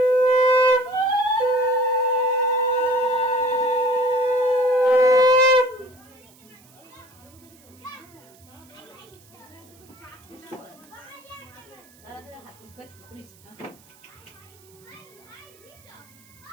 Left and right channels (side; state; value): right; noise; hiss, 27 dB below the sound